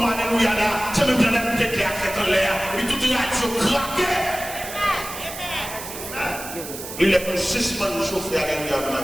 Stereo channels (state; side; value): noise; right; hiss, 10 dB below the sound